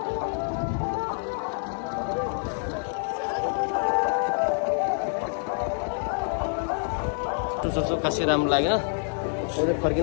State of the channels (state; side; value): silent; right; 60 dB below the other